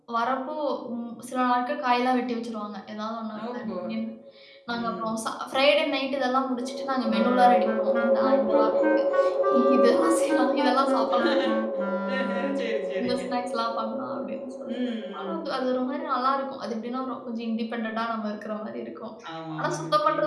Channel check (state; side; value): identical; both; correlation 1.00